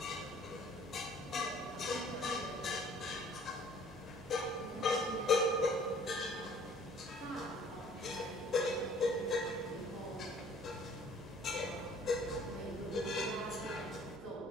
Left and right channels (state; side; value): normal; both; correlation 0.54